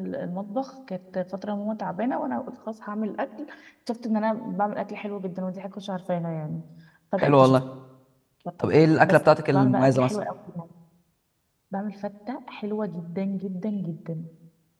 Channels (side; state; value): both; identical; correlation 1.00